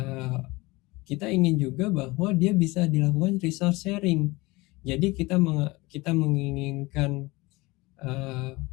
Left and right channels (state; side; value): quieter; right; 22.4 dB